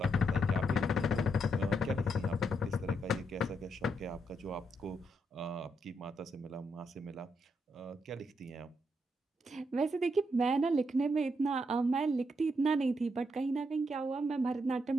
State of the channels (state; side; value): normal; both; correlation 0.79